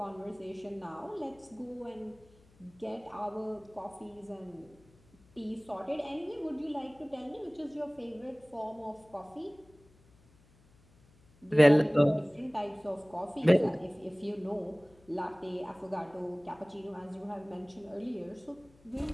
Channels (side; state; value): left; noise; hum, 29 dB below the sound